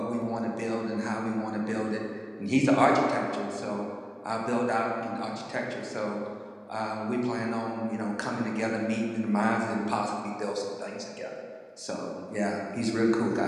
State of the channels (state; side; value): identical; both; correlation 1.00